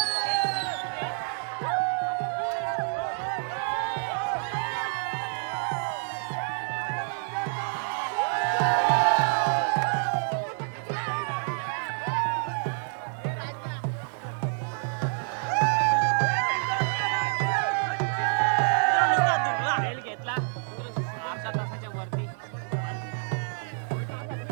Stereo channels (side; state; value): left; silent; 59 dB below the other